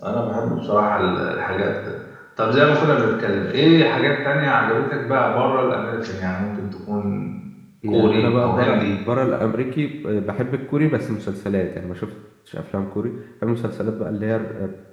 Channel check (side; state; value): both; identical; correlation 1.00